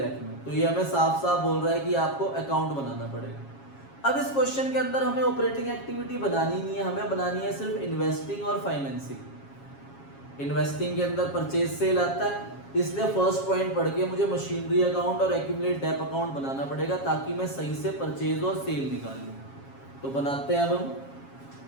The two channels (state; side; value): late; right; 7.3 ms